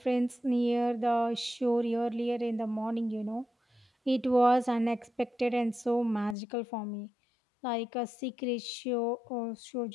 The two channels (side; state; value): right; drops out; at 6.4 s